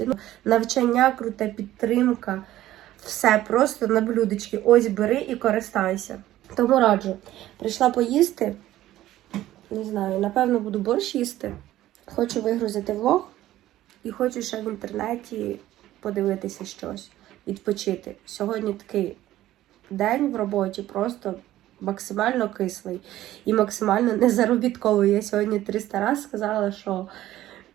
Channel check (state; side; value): quieter; left; 14.3 dB